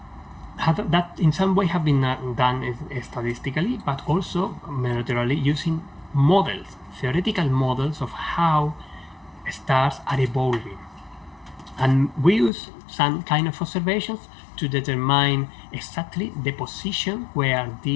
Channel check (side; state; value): right; drops out; at 12.5 s